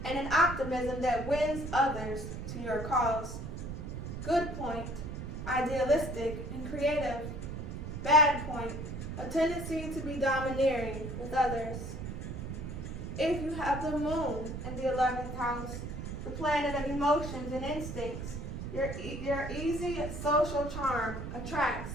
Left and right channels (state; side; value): noise; right; rumble, 6 dB below the sound